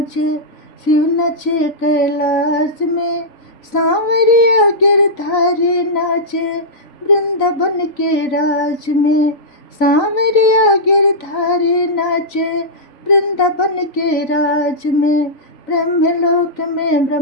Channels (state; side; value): late; right; 3.9 ms